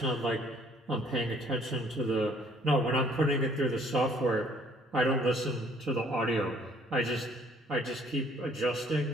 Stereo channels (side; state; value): both; normal; correlation 0.60